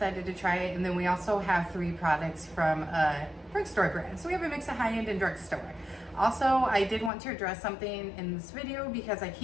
to try it. And then we also have 3 products from a drugstore brand, so we have a mix of high-end and drugstore. Also, I did want to address something in this video because I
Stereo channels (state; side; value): drops out; right; at 7.1 s